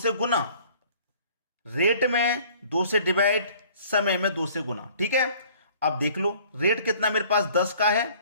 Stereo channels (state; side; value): inverted; both; correlation -0.54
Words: गुना। रेट में 2 से डिवाइड, समय में 2 से गुना। ठीक है, अब देख लो, रेट कितना मेरे पास 10 का है,